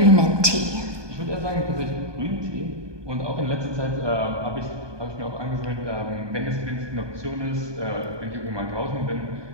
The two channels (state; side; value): late; left; 1.2 ms